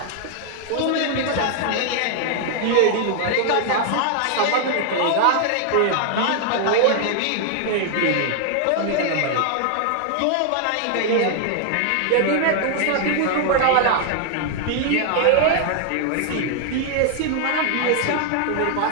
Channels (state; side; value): different; both; correlation 0.00